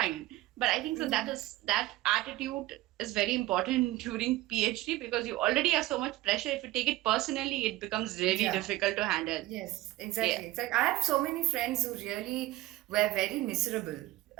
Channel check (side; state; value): left; quieter; 17.3 dB